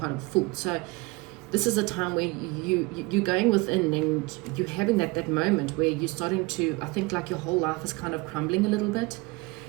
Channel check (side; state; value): left; quieter; 24.4 dB